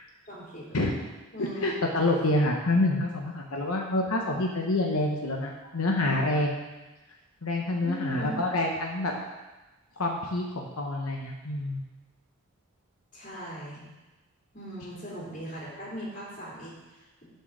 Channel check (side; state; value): both; normal; correlation 0.34